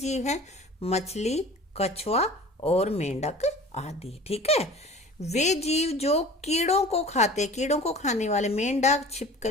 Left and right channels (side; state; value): both; normal; correlation 0.42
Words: हैं? मछली, कछुआ और मेंढक आदि। ठीक है, वे जीव जो कीड़ों को खाते, कीड़ों को खाने वाले मेंढक,